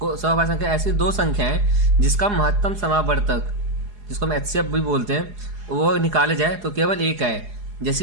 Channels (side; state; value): left; late; 4.8 ms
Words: अभाज्य संख्या, ऐसी 2 संख्याएं जिसका महत्तम समावर्तक, जिसको हम HCF भी बोलते हैं, वो निकाले जाए तो केवल एक आए।